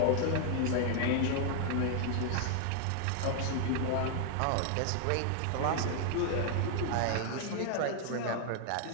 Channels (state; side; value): different; both; correlation 0.00